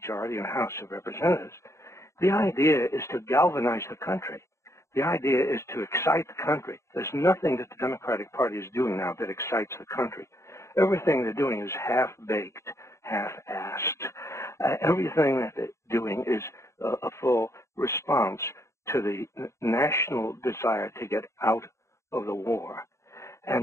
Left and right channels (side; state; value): right; late; 0.14 ms